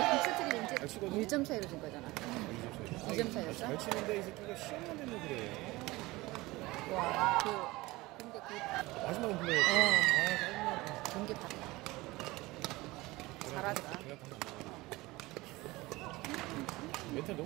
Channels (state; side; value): quieter; left; 20.7 dB